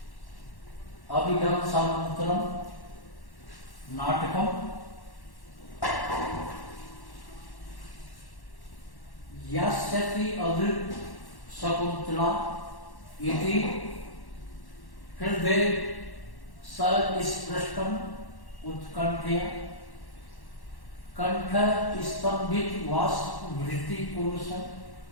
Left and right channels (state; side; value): late; right; 1.1 ms